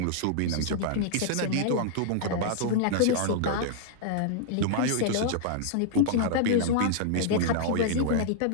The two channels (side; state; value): both; different; correlation -0.01